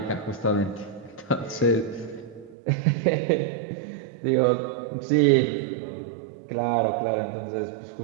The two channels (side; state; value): left; drops out; at 2.6 s